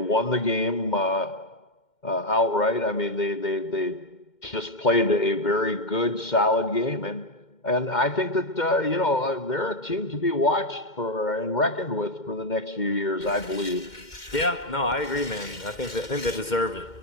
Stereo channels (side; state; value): right; late; 2.1 ms